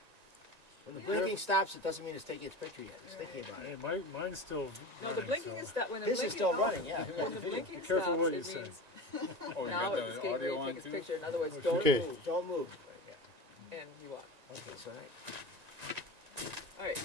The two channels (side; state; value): left; late; 1.8 ms